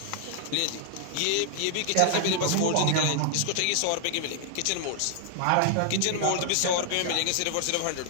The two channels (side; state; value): both; different; correlation -0.01